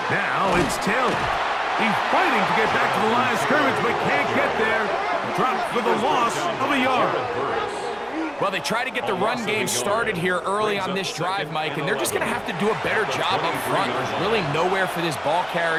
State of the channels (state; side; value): noise; right; hum, 29 dB below the sound